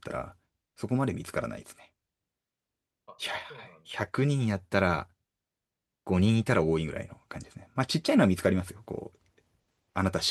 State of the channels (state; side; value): identical; both; correlation 1.00